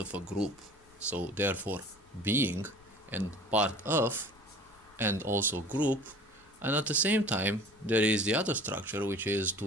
a group, so therefore being, and part of, and also group, and at the same time there is the other structure which is to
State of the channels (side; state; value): left; noise; rumble, 29 dB below the sound